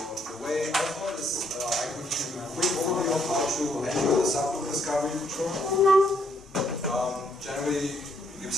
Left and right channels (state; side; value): normal; both; correlation 0.71